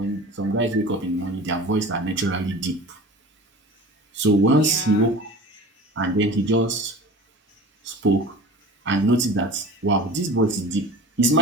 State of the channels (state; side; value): normal; both; correlation 0.37